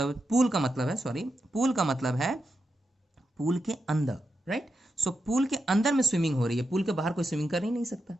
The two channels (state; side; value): normal; both; correlation 0.87